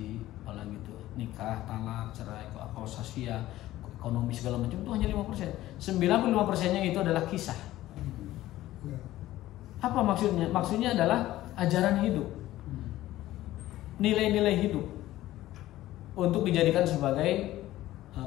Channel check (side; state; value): right; quieter; 15.3 dB